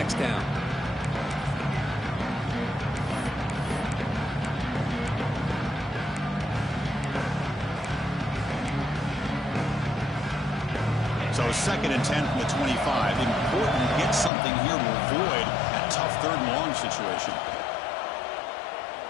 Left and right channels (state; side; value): drops out; right; at 14.3 s